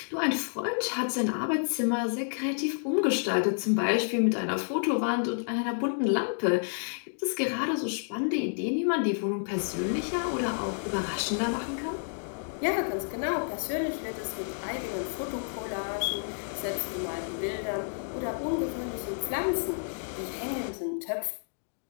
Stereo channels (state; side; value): silent; right; digital silence